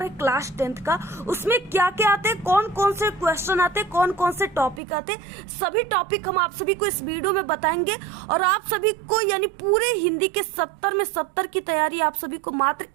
है क्लास 10 का, उसमें क्या क्या आते हैं, कौन कौन से क्वेश्चन आते हैं, कौन कौन से टॉपिक आते हैं, सभी टॉपिक हम आप सभी को इस वीडियो में बताएंगे। और आप सभी को यानी पूरे हिंदी के 70 में 70 की तैयारी आप सभी को मात्र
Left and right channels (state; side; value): drops out; left; at 4.8 s